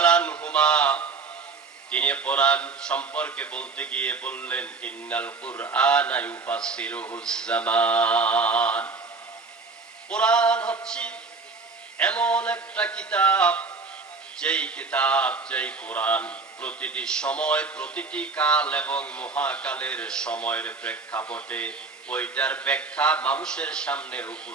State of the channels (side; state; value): left; quieter; 4.3 dB